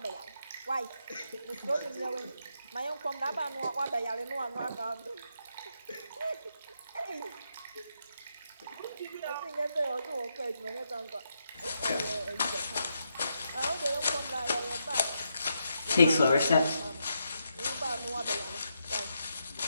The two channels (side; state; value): both; inverted; correlation -0.82